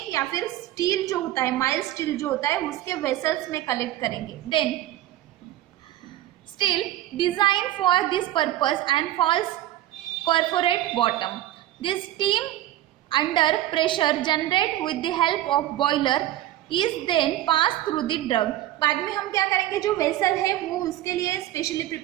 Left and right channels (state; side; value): quieter; left; 13.9 dB